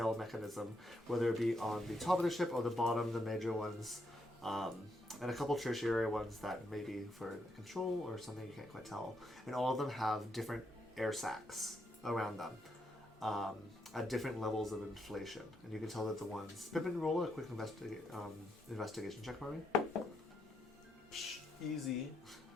mechanism, whether it be on the top of the ship or the bottom, the major ones, and a couple tertiary ones that may be for control or something you can't quite tell. And all of them have different air sacs around them at different levels of inflation. And you can tell that the ones... Pippin, roll a quick investigation check for me. Easy.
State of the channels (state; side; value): normal; both; correlation 0.79